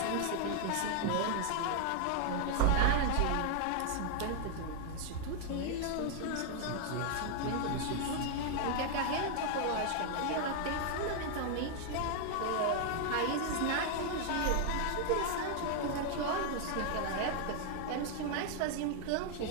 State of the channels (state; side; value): different; both; correlation 0.00